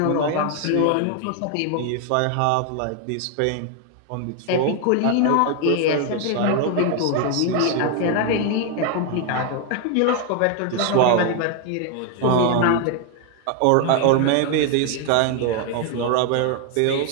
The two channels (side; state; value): both; different; correlation 0.00